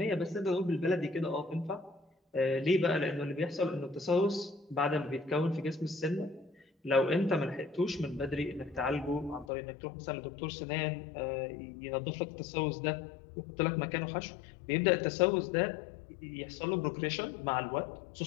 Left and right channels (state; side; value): drops out; right; at 9.5 s